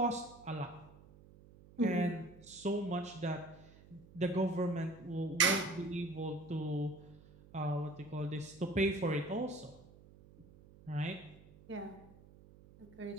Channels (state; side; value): noise; right; hum, 22 dB below the sound